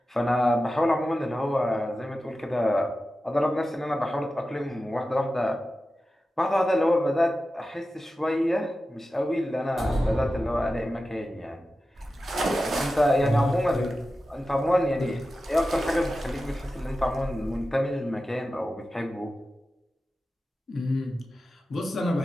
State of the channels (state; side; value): normal; both; correlation 0.93